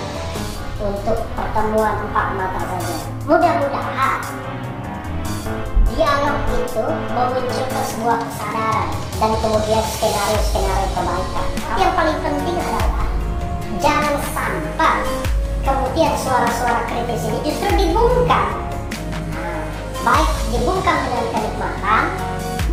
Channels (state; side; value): identical; both; correlation 1.00